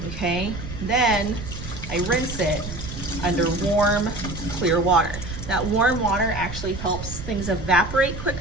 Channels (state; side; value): noise; right; rumble, 9 dB below the sound